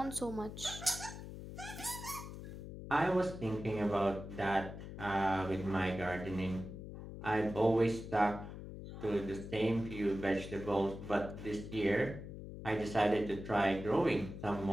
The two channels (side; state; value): left; noise; hum, 10 dB below the sound